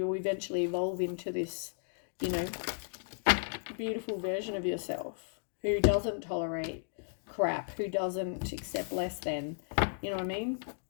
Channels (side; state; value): right; silent; digital silence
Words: will eventually evolve into this, you know, beautiful version of yourself who doesn't tolerate crap, who doesn't accept less than. You know what I mean?